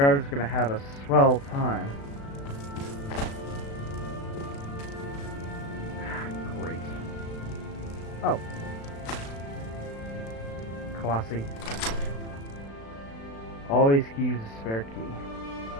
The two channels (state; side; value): late; right; 36 ms